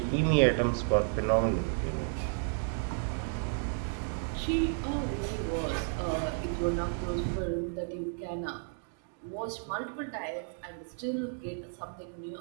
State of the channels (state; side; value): silent; left; 56 dB below the other